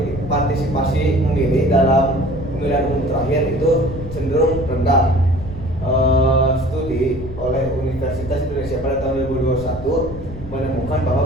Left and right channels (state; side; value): noise; left; rumble, 13 dB below the sound